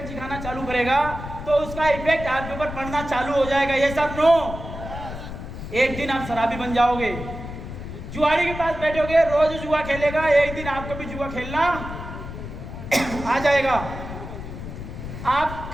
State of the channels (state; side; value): noise; left; rumble, 9 dB below the sound